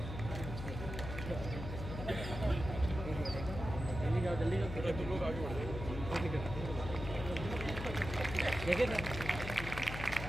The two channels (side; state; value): left; noise; hum, 7 dB below the sound